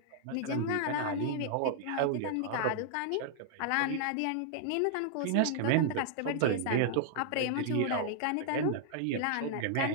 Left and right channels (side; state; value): both; different; correlation -0.01